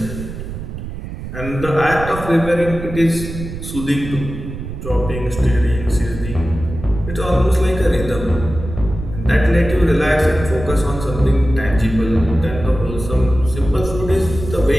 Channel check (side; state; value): right; noise; rumble, 9 dB below the sound